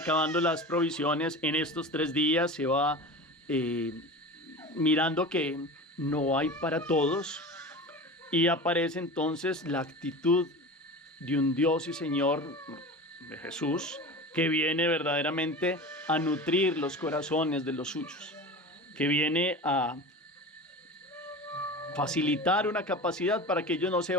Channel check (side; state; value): both; normal; correlation 0.32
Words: las provisiones, en estos 3 días se va mirando que no hay para todos, y aparece entonces la actitud de un Dios y Señor, de Jesús, que viene verdaderamente a nutrir los corazones de los suyos, que viene a facilitar una capacidad para que ellos no se